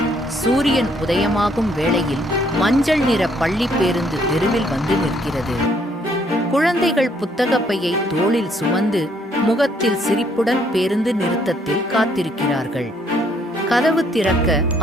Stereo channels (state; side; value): normal; both; correlation 0.68